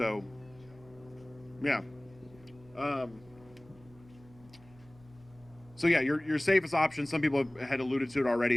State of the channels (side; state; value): right; noise; hum, 24 dB below the sound